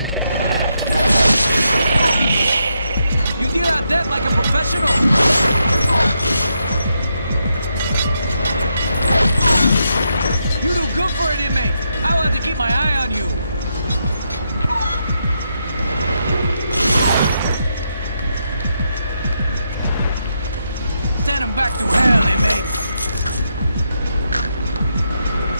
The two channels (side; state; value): both; inverted; correlation -0.81